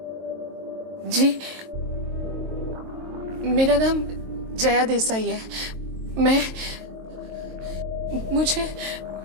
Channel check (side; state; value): left; late; 22 ms